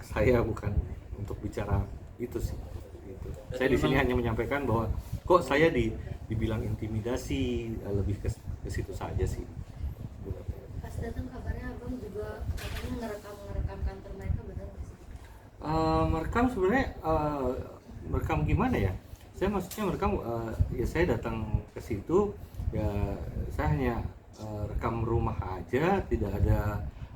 saya, bukan untuk bicara itu sih gitu. Saya di sini hanya menyampaikan bahwa kok saya dibilang intimidasi, lebih ke situ saja sih. Pas datang kabarnya abang juga katanya ngerekam kantor mereka, benar nggak sih? Merekam sebenarnya merekam gimana ya? Saya maksudnya merekam ya saya datang ke situ ya saya hanya rekam rumah aja, tidak ada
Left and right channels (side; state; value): both; identical; correlation 1.00